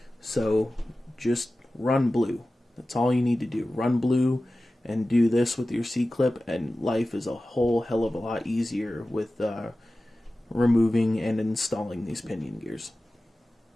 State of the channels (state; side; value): normal; both; correlation 0.95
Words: So just run blue. That's all you need to do. Run blue and do this with your C-clip, and life is a whole hell of a lot easier with removing and installing these pinion gears.